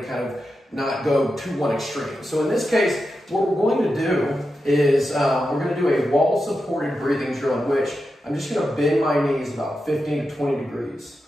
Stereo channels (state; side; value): normal; both; correlation 0.89